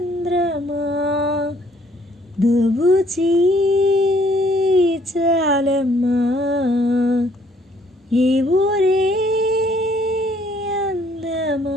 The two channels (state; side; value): normal; both; correlation 0.64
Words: దోబూచి చాలమ్మా. ఏ ఊరే